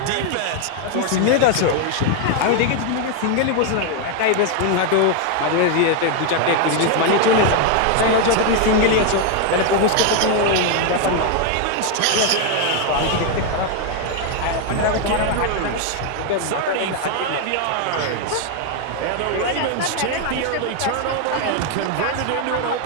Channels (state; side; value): different; both; correlation 0.01